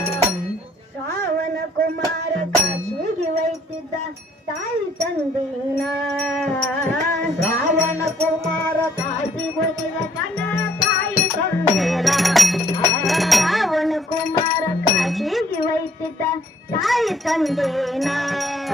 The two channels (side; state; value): both; normal; correlation 0.63